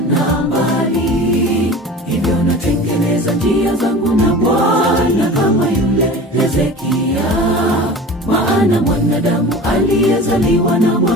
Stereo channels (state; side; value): normal; both; correlation 0.37